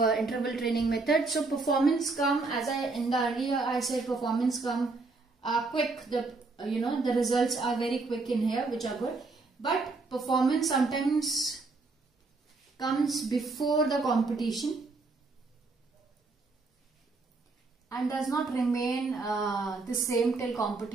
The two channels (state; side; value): quieter; left; 3.7 dB